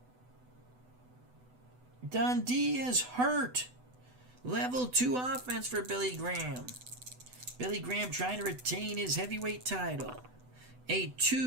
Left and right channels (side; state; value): left; late; 8.0 ms